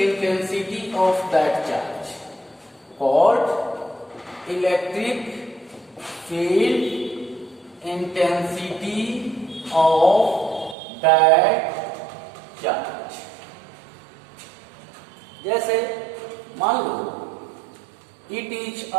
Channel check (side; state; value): left; drops out; at 10.8 s